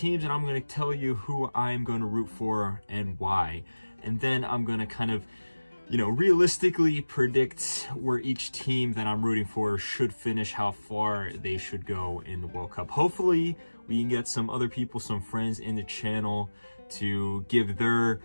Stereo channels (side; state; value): both; inverted; correlation -1.00